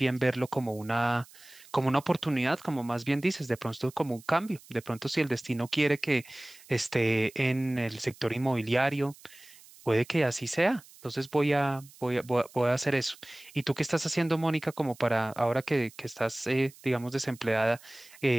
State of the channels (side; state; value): right; noise; hiss, 23 dB below the sound